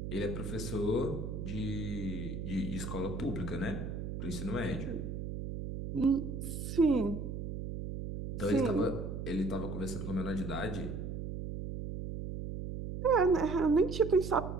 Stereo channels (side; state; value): right; noise; hum, 5 dB below the sound